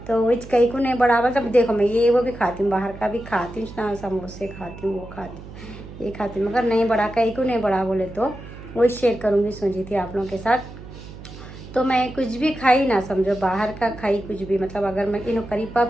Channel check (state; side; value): noise; right; hum, 15 dB below the sound